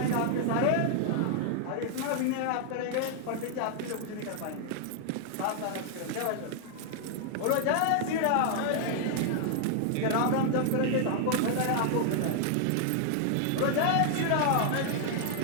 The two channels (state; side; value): different; both; correlation 0.00